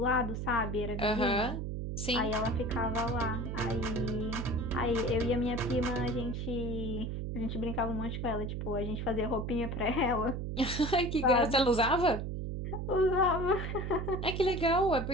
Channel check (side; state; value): right; noise; hum, 4 dB below the sound